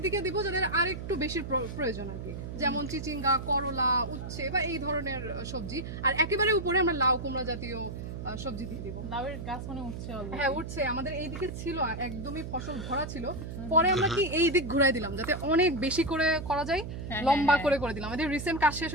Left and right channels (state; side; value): noise; right; hum, 7 dB below the sound